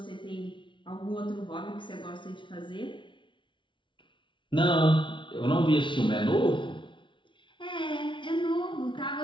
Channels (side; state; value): right; late; 0.24 ms